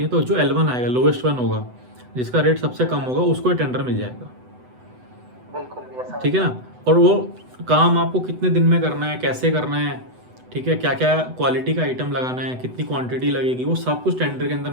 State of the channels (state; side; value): late; left; 8.0 ms